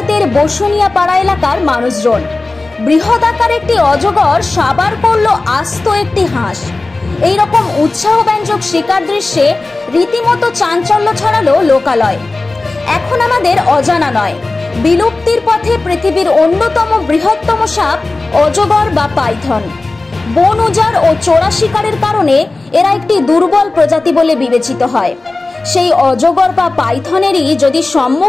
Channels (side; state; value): right; quieter; 3.3 dB